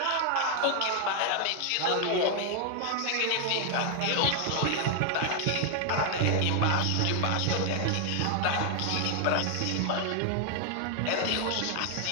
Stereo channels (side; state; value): both; different; correlation 0.00